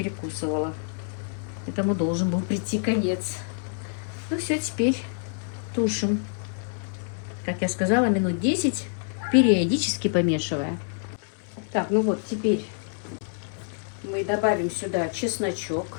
Этому должен был прийти конец. Ну все, теперь тушим. Как я сказала, минут 10, периодически помешивая. Так, ну вот, теперь мы добавим сюда чесночок,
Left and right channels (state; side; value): silent; right; 60 dB below the other